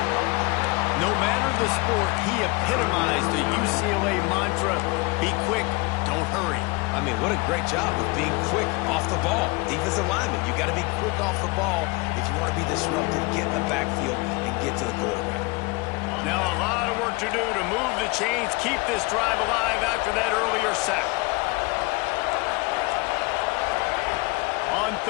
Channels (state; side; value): quieter; right; 25.8 dB